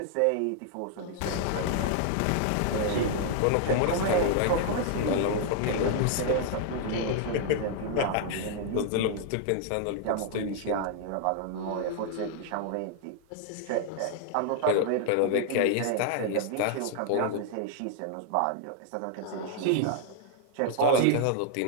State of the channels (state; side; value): different; both; correlation 0.00